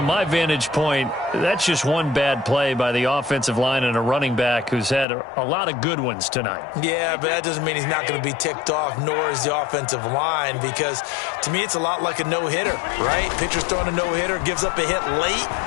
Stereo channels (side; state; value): right; drops out; at 5.1 s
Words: my vantage point, that's just one bad play by the offensive line and a running back who's had a lot of good ones tonight. Yeah, but that doesn't mean he's not going to be ticked off, nor is the offensive line, because to me it's a lot like a no-hitter, right? Pitcher's throwing a no-hitter, gives up a hit late.